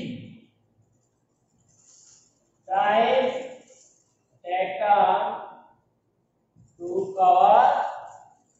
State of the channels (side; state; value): both; identical; correlation 1.00